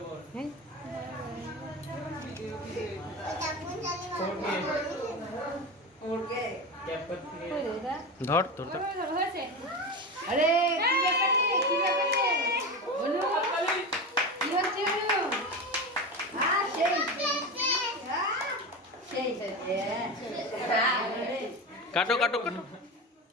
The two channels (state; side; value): normal; both; correlation 0.23